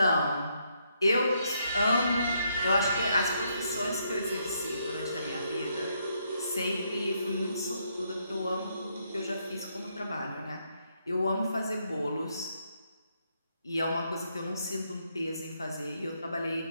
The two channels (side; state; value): both; inverted; correlation -0.75